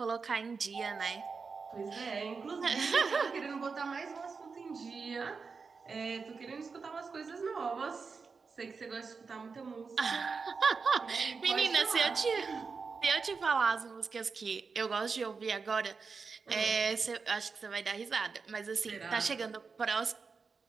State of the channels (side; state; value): left; quieter; 5.0 dB